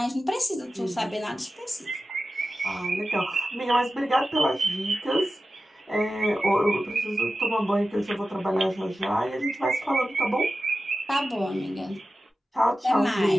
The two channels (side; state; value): both; normal; correlation 0.93